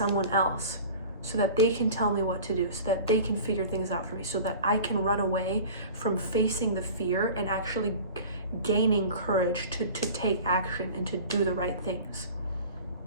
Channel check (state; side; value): inverted; both; correlation -0.40